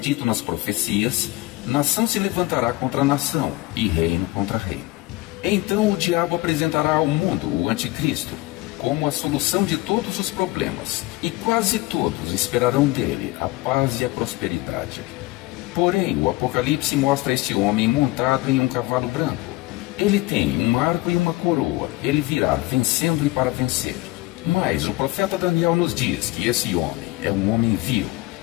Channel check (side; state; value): right; quieter; 20.1 dB